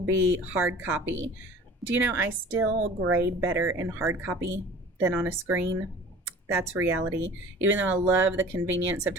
be hard copy. Do you know I still grade better in hard copy than on a screen? That's reality. Even though I love the convenience of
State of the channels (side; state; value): both; normal; correlation 0.44